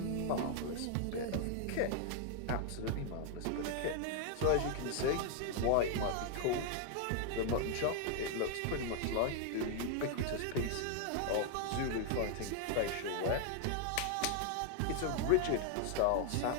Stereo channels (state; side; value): different; both; correlation 0.00